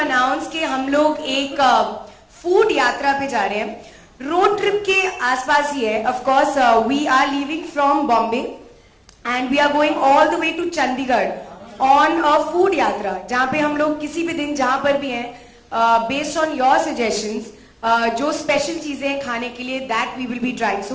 कि हम लोग एक food यात्रा पे जा रहे हैं. Road trip के आसपास ही है. Of course, we are leaving from Bombay and we are going all the way to Chandigarh on a food यात्रा, जहाँ पे हम लोग किसी भी दिन जहाँ पर भी हैं, based on your suggestions, जो special चीजें हैं खाने के लिए, that we will be trying.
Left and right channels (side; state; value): both; identical; correlation 1.00